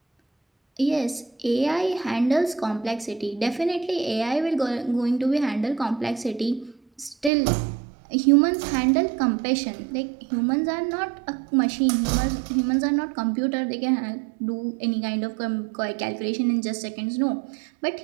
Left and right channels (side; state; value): left; drops out; at 7.3 s